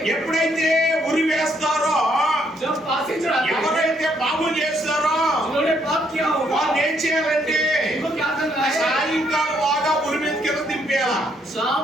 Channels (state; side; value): normal; both; correlation 0.71